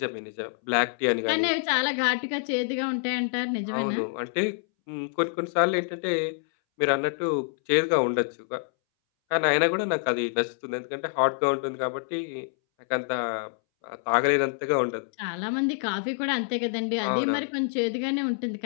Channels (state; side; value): silent; right; 60 dB below the other